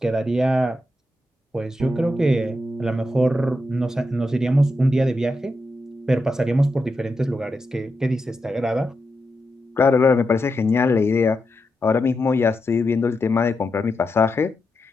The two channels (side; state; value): both; normal; correlation 0.86